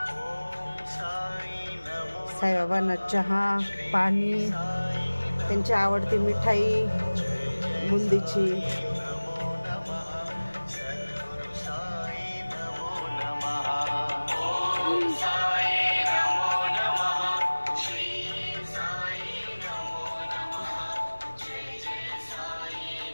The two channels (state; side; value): inverted; both; correlation -1.00